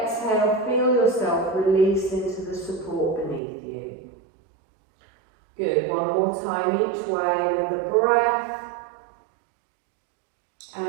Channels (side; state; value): left; drops out; at 3.4 s